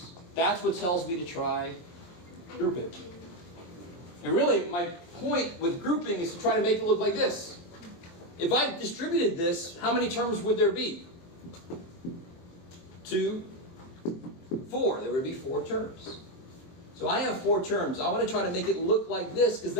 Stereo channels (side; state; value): right; late; 23 ms